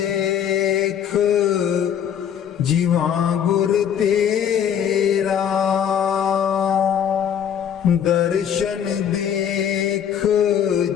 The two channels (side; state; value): right; quieter; 8.8 dB